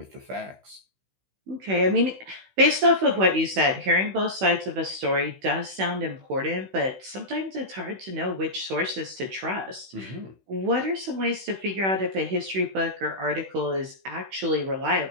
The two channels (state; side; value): late; left; 16 ms